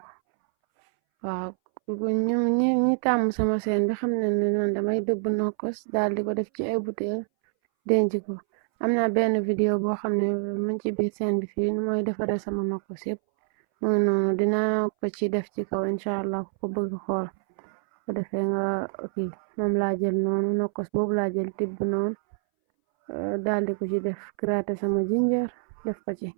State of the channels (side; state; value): left; silent; 61 dB below the other